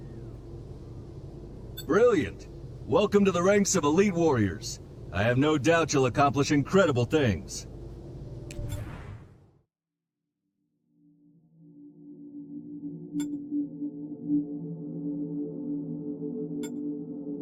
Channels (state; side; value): identical; both; correlation 1.00